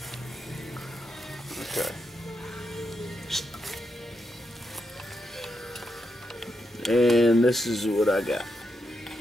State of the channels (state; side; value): normal; both; correlation 0.84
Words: Okay. And this is what I got.